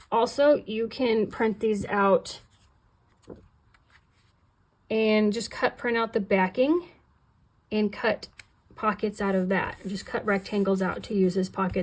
Also, you can print these out and just print out the backing and cut pockets out of that. Just cut rectangles out to use as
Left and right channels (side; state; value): both; identical; correlation 1.00